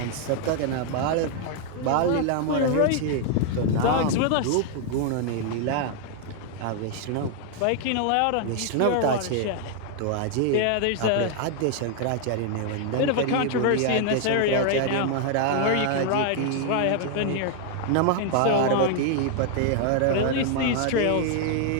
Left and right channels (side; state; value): both; different; correlation 0.00